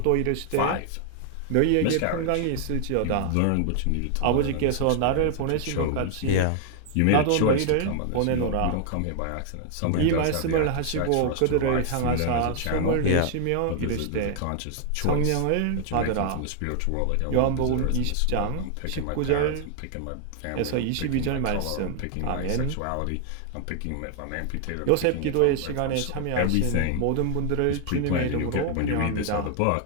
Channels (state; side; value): different; both; correlation 0.00